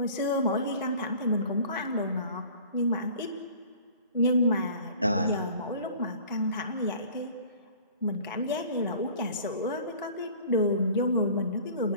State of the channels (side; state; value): both; inverted; correlation -0.47